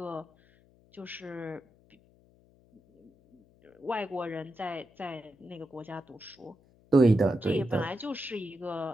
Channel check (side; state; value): left; noise; hum, 30 dB below the sound